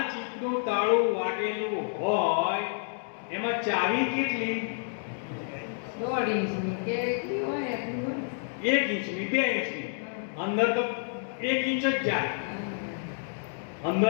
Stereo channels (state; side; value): silent; right; digital silence